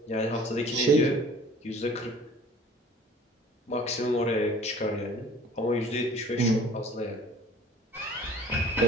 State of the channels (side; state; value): both; normal; correlation 0.49